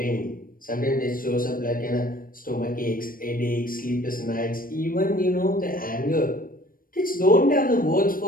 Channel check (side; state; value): right; late; 0.41 ms